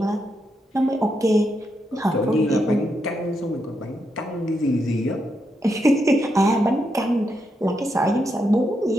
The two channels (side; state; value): both; normal; correlation 0.82